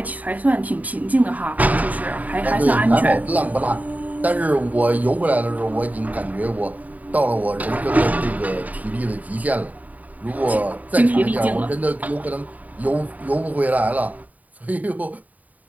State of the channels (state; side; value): late; left; 0.074 ms